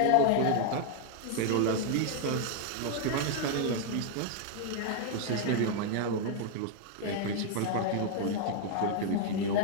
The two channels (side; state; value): both; different; correlation 0.00